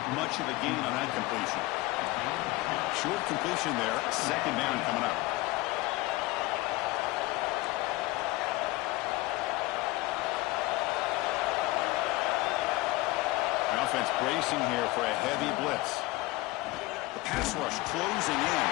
much of a gain on that completion. Short completion there, 2nd down coming up. The offense bracing here for a heavy blitz. The pass rush closing in.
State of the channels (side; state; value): right; quieter; 20.4 dB